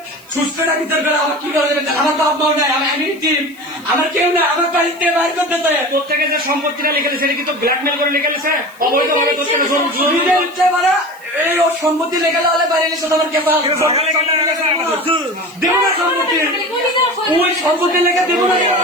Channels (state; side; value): noise; right; hiss, 25 dB below the sound